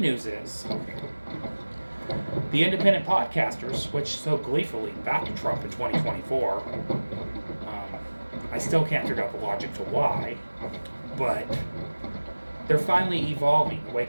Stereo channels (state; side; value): inverted; both; correlation -1.00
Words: news is, the independent podcasters, which so gleefully backed Trump in 2024, I still can't figure out the logic to why, but they're finally evolving,